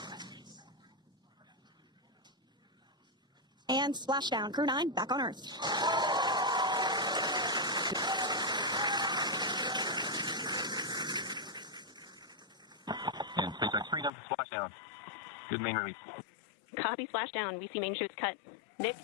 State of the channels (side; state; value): right; drops out; at 14.1 s